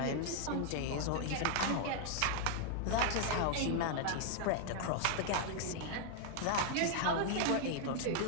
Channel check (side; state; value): both; different; correlation 0.00